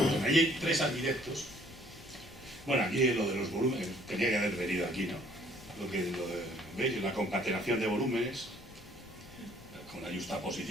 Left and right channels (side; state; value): left; noise; rumble, 21 dB below the sound